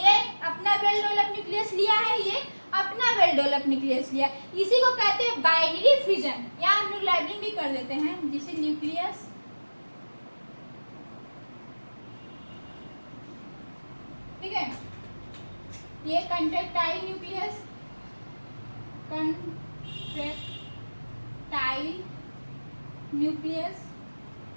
ये अपना वेल डेवलप न्यूक्लियस लिया है, ये अपना वेल डेवलप न्यूक्लियस लिया, इसी को कहते हैं बाइनरी फिजन। यहाँ हम लोग लेबलिंग भी कर देते हैं, जिसे न्यूक्लियस, ठीक है, ये कंट्रैक्टाइल न्यूक्लियस, कंट्रैक्टाइल न्यूक्लियस,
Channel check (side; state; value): both; inverted; correlation -1.00